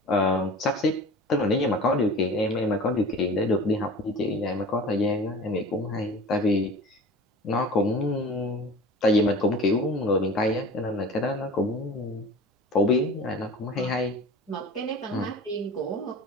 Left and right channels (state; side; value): normal; both; correlation 0.40